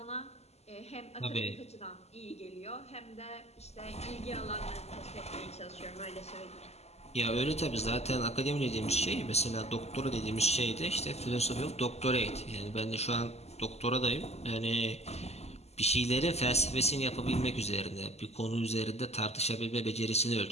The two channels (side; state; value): right; late; 0.31 ms